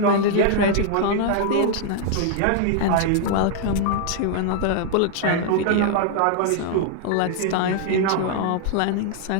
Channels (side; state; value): both; different; correlation 0.00